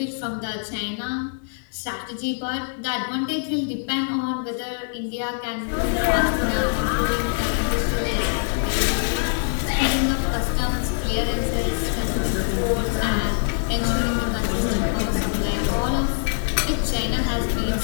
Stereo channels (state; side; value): silent; right; 63 dB below the other